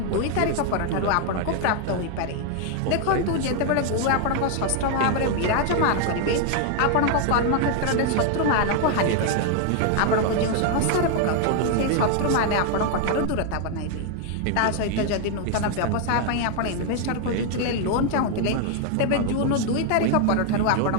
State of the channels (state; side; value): different; both; correlation 0.00